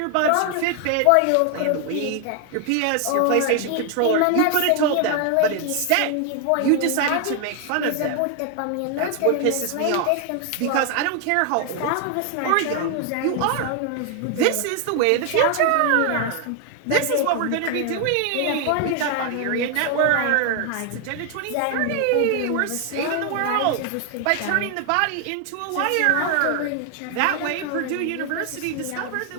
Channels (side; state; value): both; different; correlation 0.00